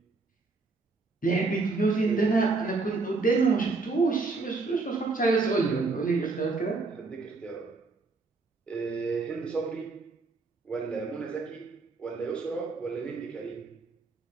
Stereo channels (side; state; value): left; quieter; 3.9 dB